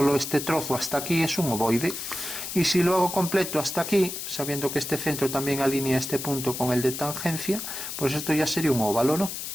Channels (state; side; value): noise; left; hiss, 6 dB below the sound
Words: este trozo hasta aquí, es un ovoide. Y si lo hago completo hasta aquí, sabiendo que este centro también alinea este punto con el de tangencia, pues esto ya sería un óvalo, ¿no?